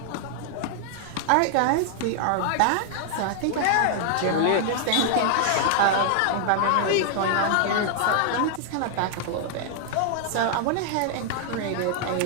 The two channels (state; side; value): different; both; correlation 0.00